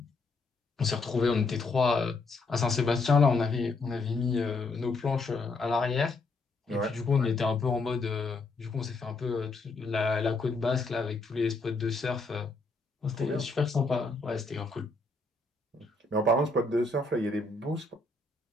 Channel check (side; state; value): right; quieter; 3.4 dB